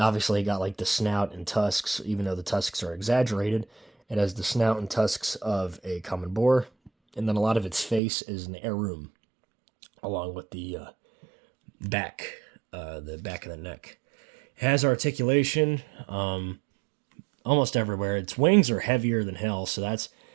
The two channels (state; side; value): drops out; left; at 8.0 s